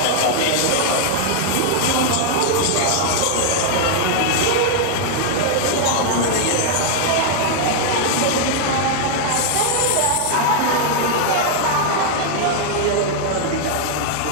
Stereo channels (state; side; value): different; both; correlation 0.00